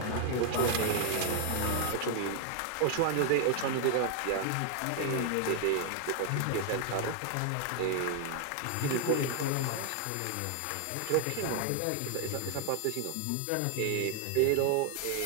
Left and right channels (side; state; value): both; different; correlation 0.00